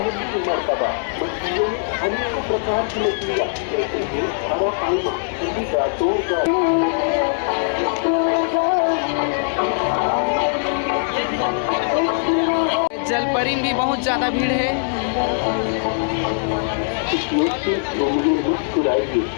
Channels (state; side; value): silent; right; digital silence